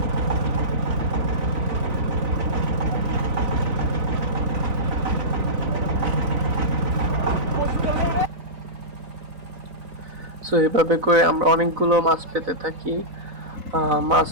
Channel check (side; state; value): left; late; 4.0 ms